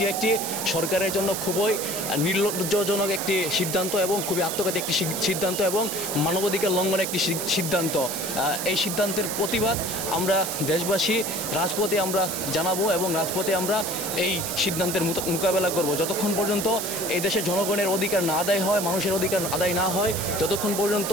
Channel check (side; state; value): right; noise; hiss, 4 dB below the sound